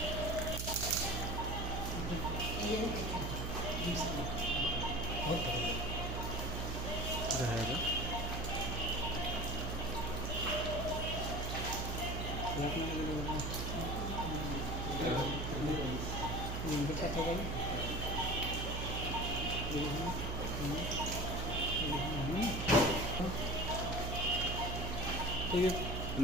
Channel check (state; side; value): noise; right; hum, 3 dB below the sound